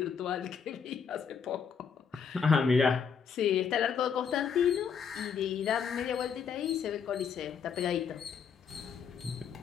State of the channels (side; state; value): right; quieter; 6.7 dB